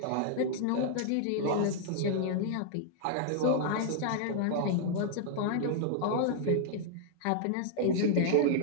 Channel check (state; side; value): different; both; correlation -0.01